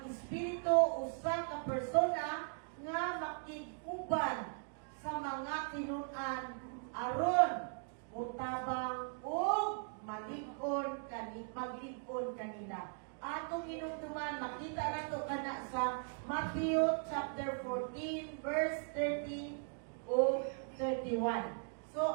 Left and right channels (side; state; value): left; silent; 52 dB below the other